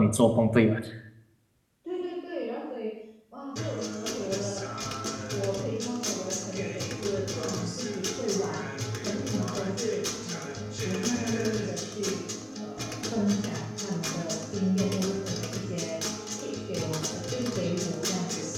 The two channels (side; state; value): both; identical; correlation 1.00